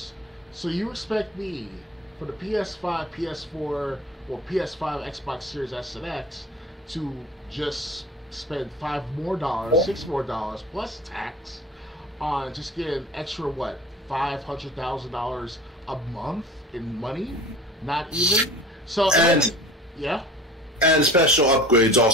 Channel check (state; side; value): normal; both; correlation 0.40